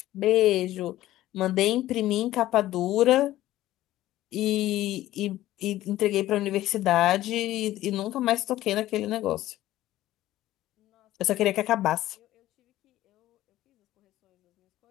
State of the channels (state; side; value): quieter; right; 14.8 dB